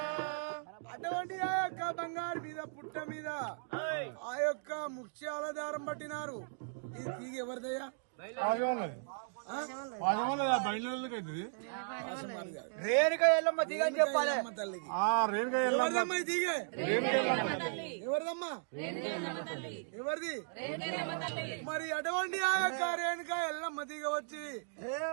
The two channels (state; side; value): silent; left; digital silence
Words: అటువంటి ఆ యొక్క బంగారు మీద పుట్ట మీద ఆ యొక్క ముత్యాల దారం పట్టినారు. ఇది తీగ ఎవరిదయ్యా? రేణుక ఎల్లమ్మ తీగ అని చెప్పాలి తల్లికి. ఎవరిదమ్మా ఈ తీగ? ఎవరిదమ్మా? ఎవరిది? మరి అటువంటి ఆ యొక్క రేణుక ఎల్లమ్మ తీగ వచ్చి